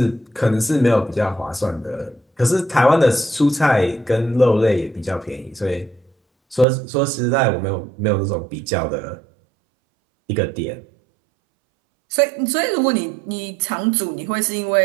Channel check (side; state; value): left; drops out; at 6.7 s